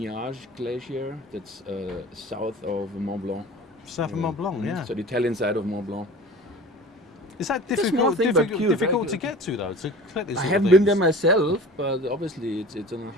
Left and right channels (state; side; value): normal; both; correlation 0.40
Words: Glacier. That's south of Mont Blanc. South of Mont Blanc, yeah. So the Italian side of Mont Blanc. Is that difficult to get to though? To collect these I haven't been there myself, but obviously it's on a